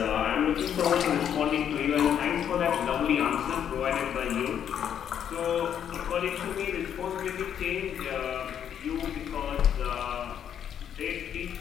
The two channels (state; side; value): quieter; right; 9.0 dB